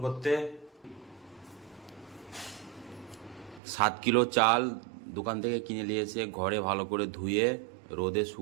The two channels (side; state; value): left; drops out; at 3.6 s